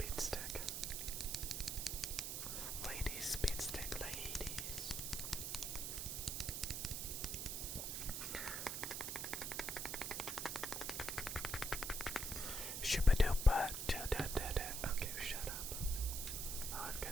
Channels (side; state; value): right; noise; hiss, 2 dB below the sound